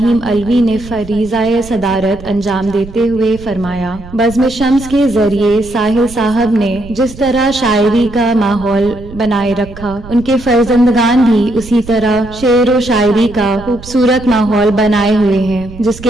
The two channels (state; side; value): noise; right; rumble, 16 dB below the sound